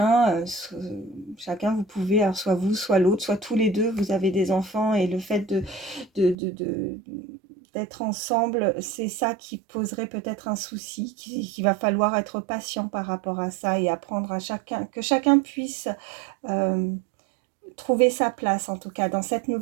vous pouvez, alors soit vous, soit l'autre, soit tous les deux, vous avez des enfants, et le fait d'être ensemble, c'est ça qui poserait peut-être un souci, qu'il va falloir être patient par rapport à ça et apprendre à chacun, que chacun puisse trouver sa place, en tout cas, dans cette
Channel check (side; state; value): left; drops out; at 6.4 s